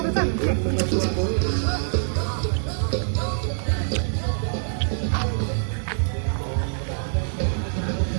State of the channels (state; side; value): silent; left; digital silence